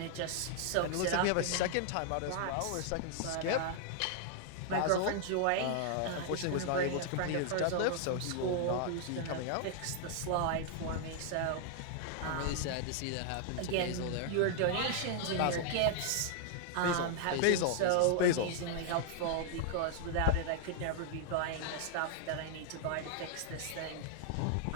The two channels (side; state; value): both; different; correlation 0.00